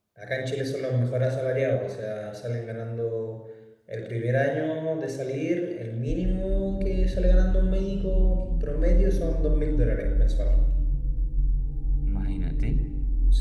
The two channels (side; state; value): both; identical; correlation 1.00